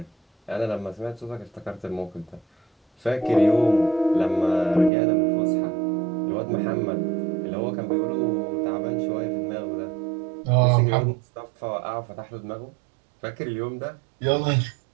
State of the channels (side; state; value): left; drops out; at 4.9 s